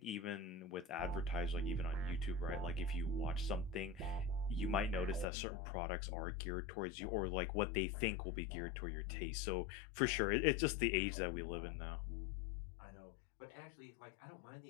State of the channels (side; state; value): right; drops out; at 5.2 s